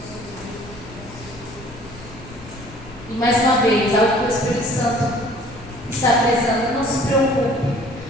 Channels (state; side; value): noise; left; rumble, 19 dB below the sound